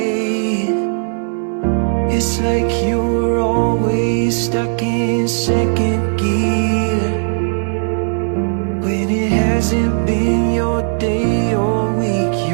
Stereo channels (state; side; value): silent; left; 63 dB below the other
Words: It's like you're always stuck in second gear, when it hasn't been your day, your week,